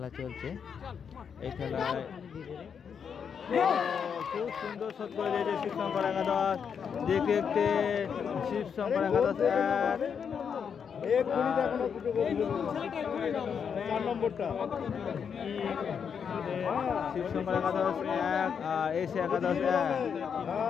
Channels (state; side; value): quieter; right; 7.0 dB